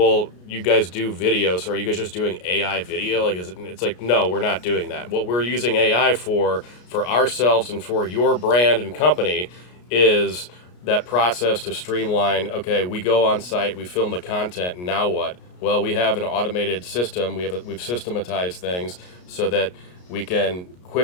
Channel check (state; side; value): late; right; 33 ms